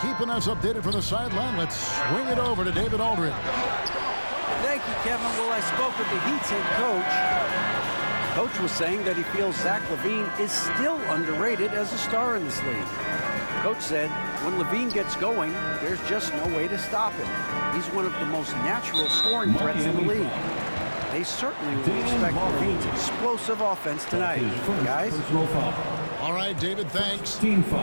keeping us updated from the sideline, let's swing it over to David Aldridge. Thank you, Kevin. Well, I spoke with the Heat's head coach. Coach was saying that he feels Zach LaVine is still underrated as a star in this league. Coach said when LaVine gets going, there's just no way to stop him. He's one of the most natural scoring threats in the league. They certainly will expect LaVine's explosive offense tonight. Guys? All right, David, thanks.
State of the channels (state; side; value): inverted; both; correlation -1.00